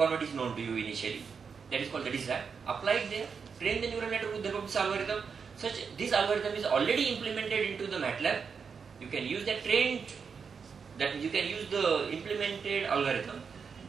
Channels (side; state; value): left; quieter; 5.9 dB